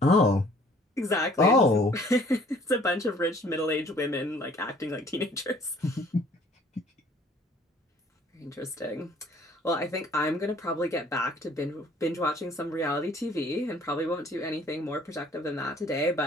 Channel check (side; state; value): both; normal; correlation 0.56